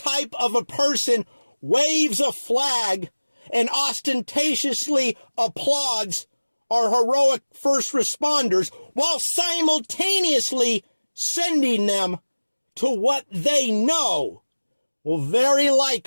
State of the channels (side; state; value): both; inverted; correlation -1.00